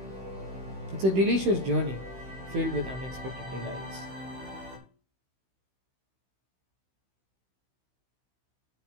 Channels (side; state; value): left; late; 16 ms